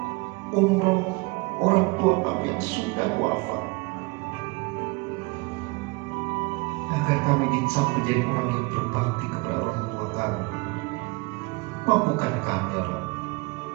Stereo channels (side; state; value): left; quieter; 26.1 dB